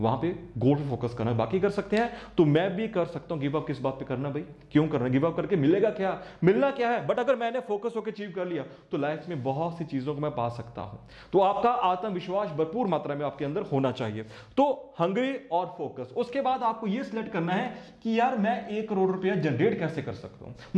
पे गोल पे फोकस करना। बाकी कर सकते हैं तो मैं भी कर सकता हूं। गिव अप किस बात पे करना भाई, क्यों करना? गिव अप करके मिलेगा क्या, मिलना क्या है? बट अगर मैंने फोकस होकर अचीव कर लिया तो लाइफ में बहुत सी चीजों को मैं पा सकता हूं। तो आपका आत्मविश्वास भरपूर मात्रा में आपके अंदर होना चाहिए। तो हंग्री और फोकस। उसके बाद आपको यह सिलेक्ट करना है कि यार मैं 1 करोड़ रुपया जनरेट कैसे कर सकता हूं,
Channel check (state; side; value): identical; both; correlation 1.00